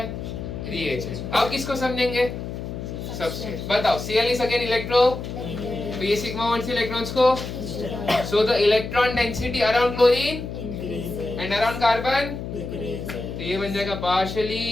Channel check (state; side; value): noise; left; hum, 7 dB below the sound